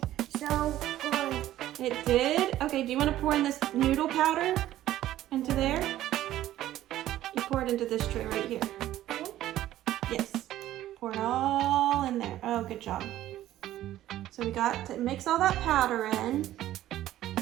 So good. It did? Okay, do you want to pour in this noodle powder into there? You pour it into this tray right here. Yes. Pour it all in there. Oh, good job. So we got to mix all that powder in.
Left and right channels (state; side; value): quieter; left; 13.6 dB